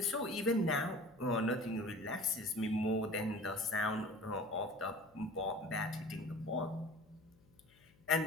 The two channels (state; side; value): noise; left; hum, 29 dB below the sound